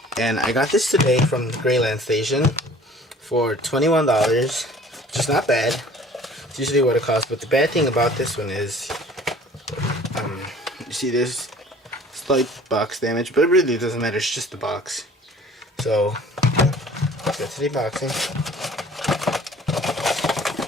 And I got this today from the Grayland Station for $21, which is not bad. It's usually what it costs, but the bad thing about this one is, you see there's slight box damage, but it really doesn't matter, it's just the box. So, let's get to the unboxing.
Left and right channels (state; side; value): normal; both; correlation 0.49